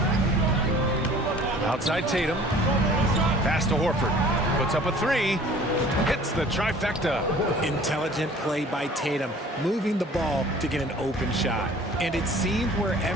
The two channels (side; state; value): both; normal; correlation 0.49